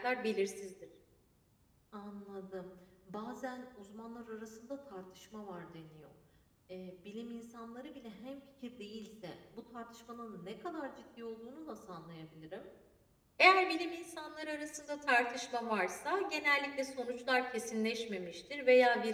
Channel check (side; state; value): both; identical; correlation 1.00